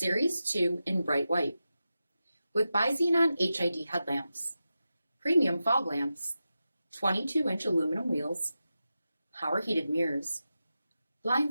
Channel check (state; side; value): inverted; both; correlation -0.92